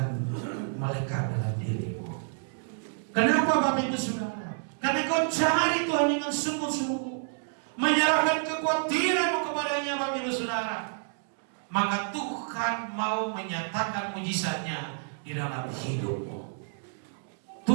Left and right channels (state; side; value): silent; left; digital silence